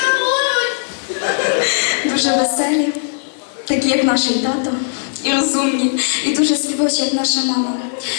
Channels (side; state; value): right; silent; 68 dB below the other